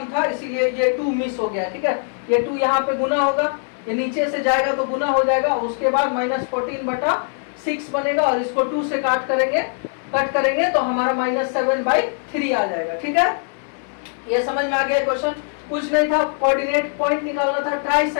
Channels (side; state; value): right; silent; 59 dB below the other